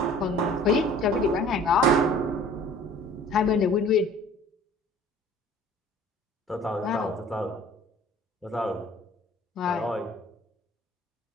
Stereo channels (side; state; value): both; normal; correlation 0.50